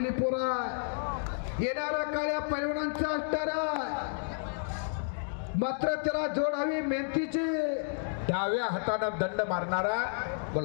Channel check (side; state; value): right; silent; digital silence